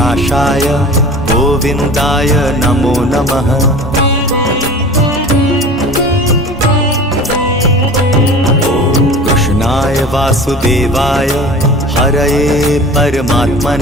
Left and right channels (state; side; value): normal; both; correlation 0.39